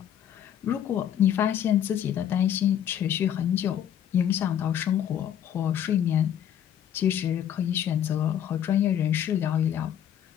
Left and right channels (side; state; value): right; quieter; 10.0 dB